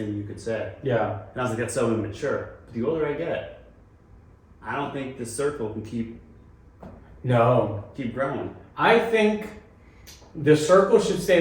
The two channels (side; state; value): both; identical; correlation 1.00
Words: you could say. yeah. And I was like, that's so immature. But the older I get, I don't think this circle can keep No. growing. I think the circle should stay